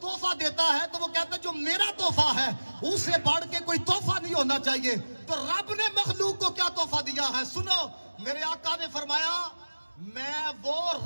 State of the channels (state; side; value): inverted; both; correlation -1.00